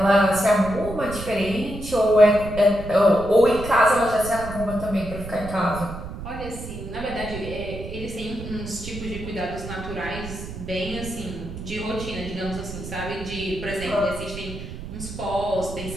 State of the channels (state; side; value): noise; right; rumble, 10 dB below the sound